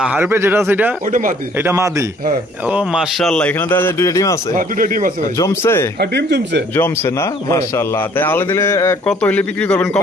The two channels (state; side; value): normal; both; correlation 0.59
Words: হারপে যেটা সেটা ওটা মাদি। এটা মাদি হ্যাঁ। ও মাশাআল্লাহ এখানে দেখা যায় দুইটা ডিম আছে হ্যাঁ, দুটো ডিম আছে ভাই। জমছে হ্যাঁ, ডিম জমছে। জমছে না মাশাআল্লাহ তাই আলে দিলে কত হইলে বিক্রি করবেন